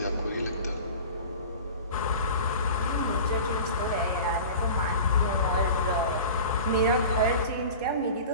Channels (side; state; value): both; inverted; correlation -0.37